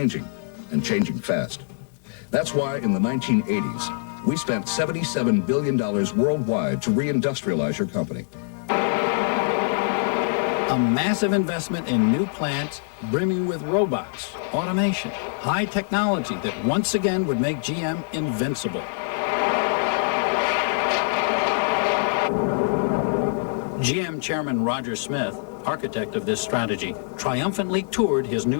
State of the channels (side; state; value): right; silent; 58 dB below the other